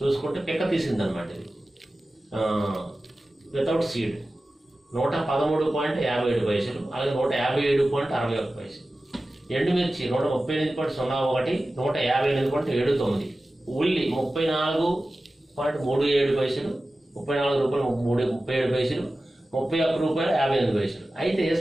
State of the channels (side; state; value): both; normal; correlation 0.95